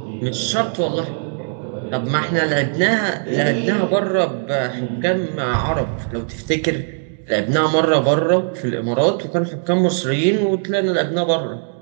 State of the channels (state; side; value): silent; left; digital silence